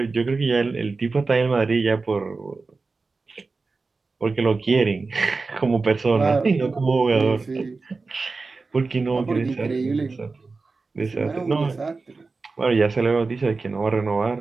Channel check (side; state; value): left; quieter; 4.0 dB